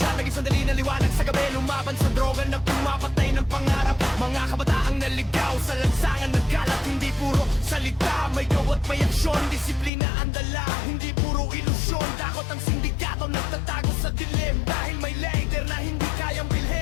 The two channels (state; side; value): drops out; right; at 9.9 s